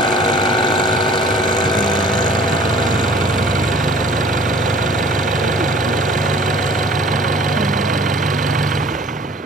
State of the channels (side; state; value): both; normal; correlation 0.50